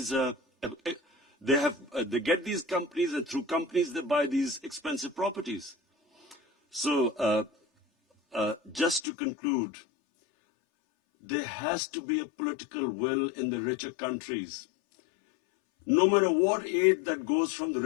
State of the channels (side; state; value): right; drops out; at 9.1 s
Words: they get these companies, and through companies they buy these expensive properties. So just to conclude, there has to be a political will in the richer countries. No matter what aid that goes from the